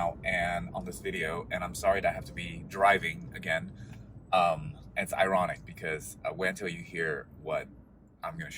and on this video, and I'm sorry that I have to be driving again. And it's ironic because wait until you hear what I'm going to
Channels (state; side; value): identical; both; correlation 1.00